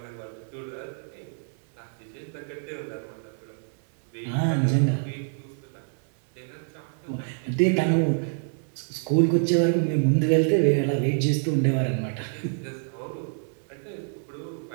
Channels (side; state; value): left; silent; 60 dB below the other